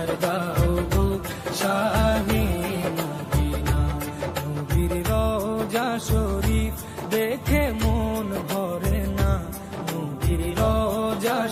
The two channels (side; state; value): both; identical; correlation 1.00